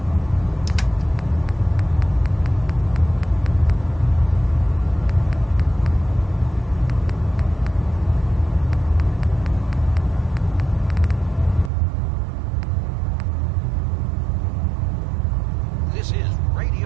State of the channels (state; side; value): drops out; left; at 11.7 s